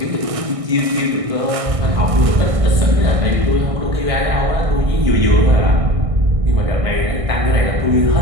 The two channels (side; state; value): left; late; 1.6 ms